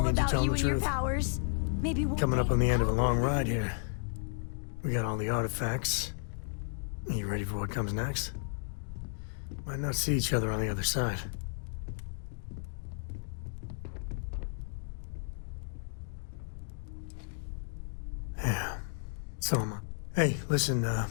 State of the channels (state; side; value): silent; right; digital silence